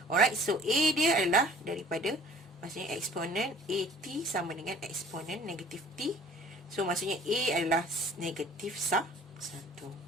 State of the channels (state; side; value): normal; both; correlation 0.51